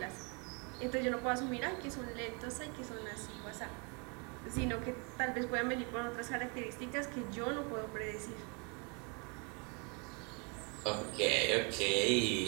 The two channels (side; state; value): left; quieter; 32.4 dB